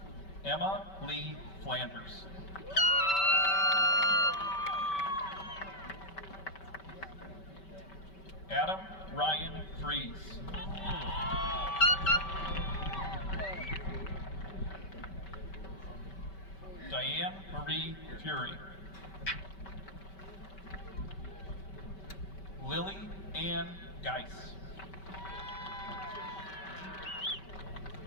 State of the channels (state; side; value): late; right; 5.2 ms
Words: Emma Lee Flanders. Adam Ryan Fries. Diane Marie Fury. Lily Ann Geis.